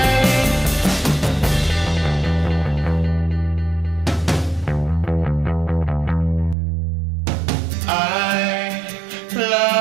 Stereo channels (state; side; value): drops out; left; at 6.6 s